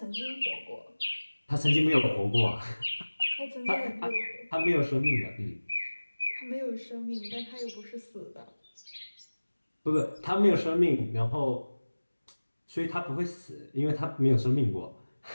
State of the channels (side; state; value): both; inverted; correlation -1.00